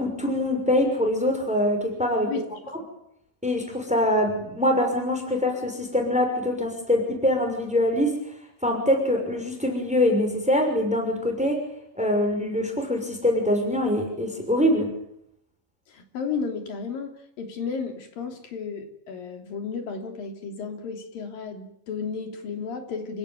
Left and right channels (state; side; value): normal; both; correlation 0.28